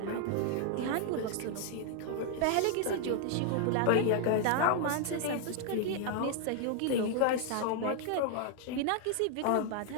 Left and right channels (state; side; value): different; both; correlation 0.00